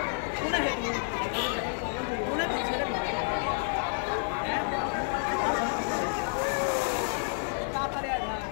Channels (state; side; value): silent; right; 58 dB below the other